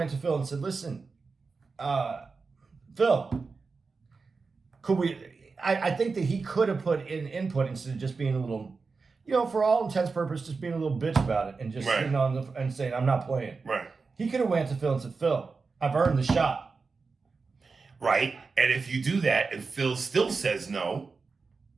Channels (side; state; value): left; quieter; 4.5 dB